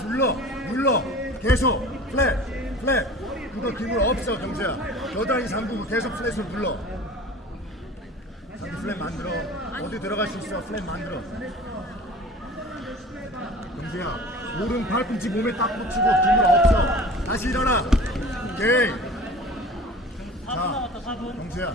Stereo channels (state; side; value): normal; both; correlation 0.41